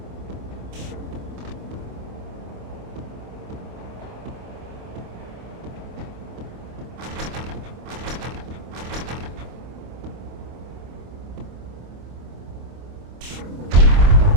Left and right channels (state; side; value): late; left; 25 ms